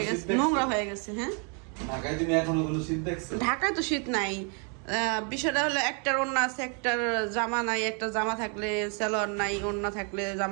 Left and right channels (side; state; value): left; quieter; 37.8 dB